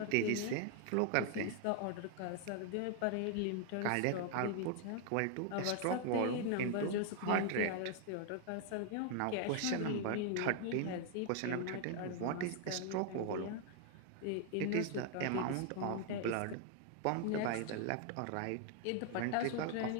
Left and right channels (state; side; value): different; both; correlation 0.00